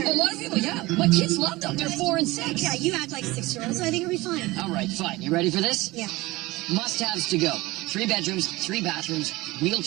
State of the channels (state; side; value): quieter; left; 20.6 dB